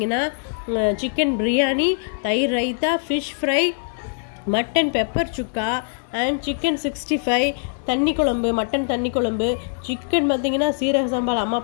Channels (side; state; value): right; silent; 64 dB below the other